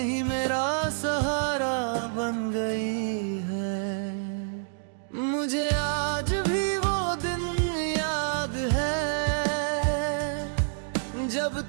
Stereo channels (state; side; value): silent; left; digital silence